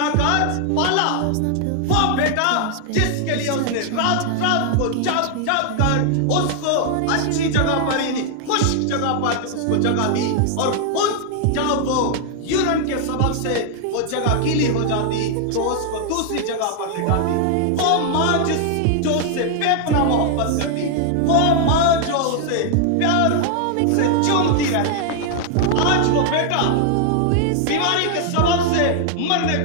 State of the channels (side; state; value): both; different; correlation 0.00